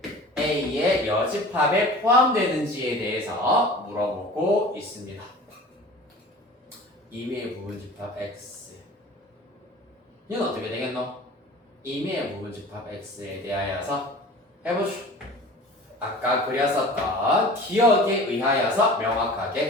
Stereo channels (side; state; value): both; normal; correlation 0.41